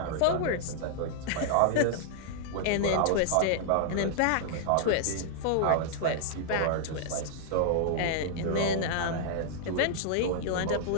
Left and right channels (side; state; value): both; different; correlation -0.01